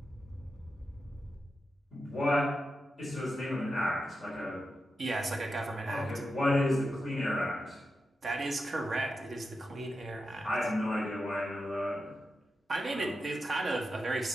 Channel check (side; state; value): both; normal; correlation 0.89